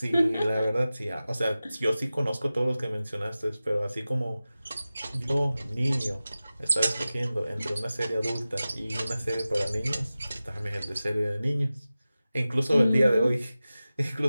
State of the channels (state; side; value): inverted; both; correlation -0.96